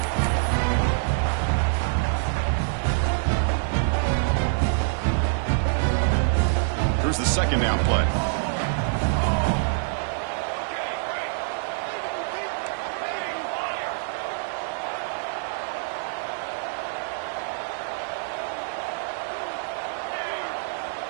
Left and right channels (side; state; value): left; silent; digital silence